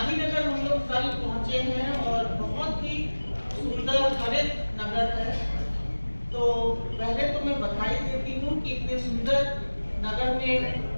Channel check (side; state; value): both; inverted; correlation -1.00